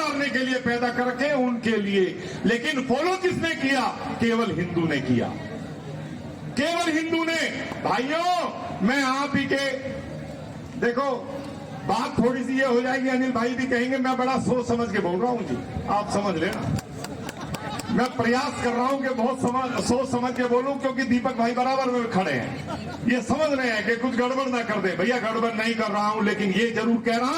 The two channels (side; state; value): both; identical; correlation 1.00